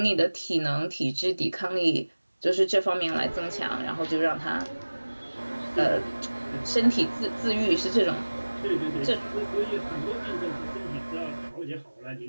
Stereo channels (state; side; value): inverted; both; correlation -1.00